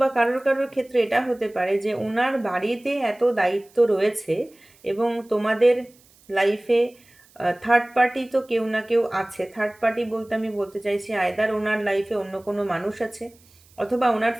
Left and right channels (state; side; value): noise; right; hiss, 29 dB below the sound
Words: কারোর কারোর ক্ষেত্রে এটা হতে পারে যে ওনার বাড়িতে এত দায়িত্ব রয়েছে, এবং তোমাদের লাইফে থার্ড পার্টি তো কেউ না কেউ আছে। থার্ড পার্টি বলতে আমি বলতে চাইছি আয়দার ওনার লাইফে অন্য কোনো মানুষ আছে, অথবা ওনার